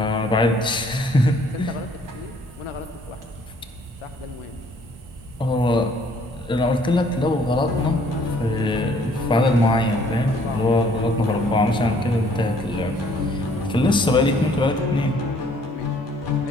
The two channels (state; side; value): normal; both; correlation 0.61